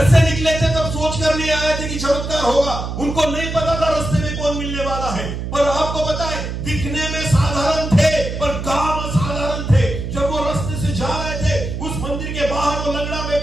से निकले थे तब सोचकर नहीं आए थे कि चमत्कार होगा। उनको नहीं पता था रास्ते में कौन मिलने वाला है, पर आपको पता है दिखने में साधारण थे पर काम असाधारण थे। जब वो रास्ते से जा रहे थे, उस मंदिर के बाहर वो लंगड़ा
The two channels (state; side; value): noise; right; hum, 5 dB below the sound